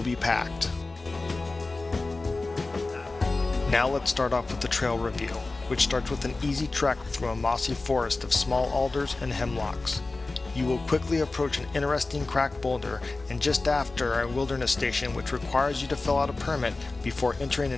be packed. Now let's start off with the trail review, which starts with an easy trek through a mossy forest of small alders and hemlocks. You will quickly approach an interesting cracked boulder and just after a wilderness station which requires you to fill out a permit before entering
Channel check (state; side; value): quieter; right; 3.4 dB